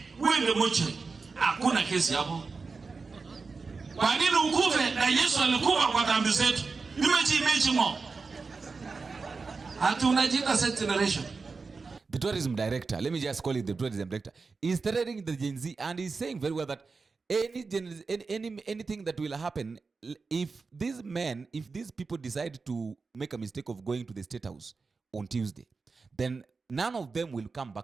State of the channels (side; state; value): left; quieter; 4.4 dB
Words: Wewe ndio mocho. Hakuna kesi hapo. Kwa nini ukufe na Yesu alikufa kwa dhambi zetu? Nimechi mo. Hatu unajiita set generation. The tourism director, let me just call it the tourism director, is threatening the Gen Z, and he's saying very well that anything that will happen if these people decide to make a mistake of going to the State House on Tuesday, then none of them will come